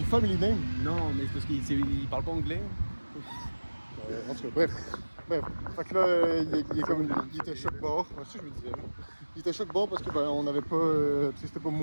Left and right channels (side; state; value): both; inverted; correlation -1.00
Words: family name. Non, mais c'est parce qu'il parle pas anglais. En tout cas, bref. Fait que là, il était choc-bord. Ouais, c'est ce que je me disais. Il était choc-bord parce que ben, on n'avait pas. C'était pas